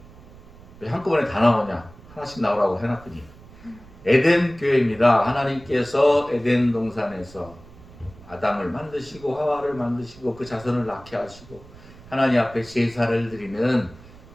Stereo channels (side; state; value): right; noise; rumble, 21 dB below the sound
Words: 왜 한꺼번에 다 나오냐? 하나씩 나오라고 해놨더니. 에덴 교회입니다. 하나님께서 에덴 동산에서 아담을 만드시고 하와를 만드시고 그 자손을 낳게 하시고 하나님 앞에 제사를 드리는